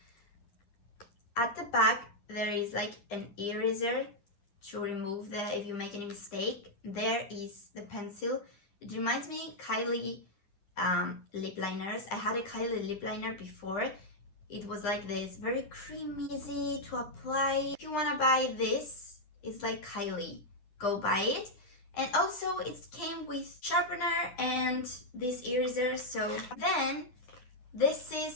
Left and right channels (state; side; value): late; right; 9.9 ms